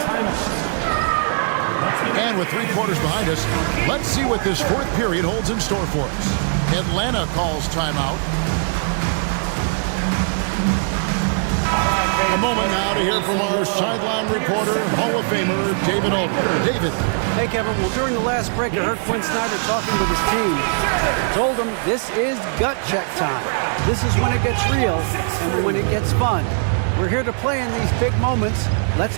And with 3 quarters behind us, let's see what this 4th period holds in store for us. Atlanta calls timeout. A moment now to hear from our sideline reporter, Hall of Famer, David Aldridge. David. Hey, Kevin. Well, during the last break, I heard Quinn Snyder talking with his team. I told him this is gut check time. This is when it gets real and when it gets fun. We're here to play in these big moments.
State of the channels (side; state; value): left; silent; digital silence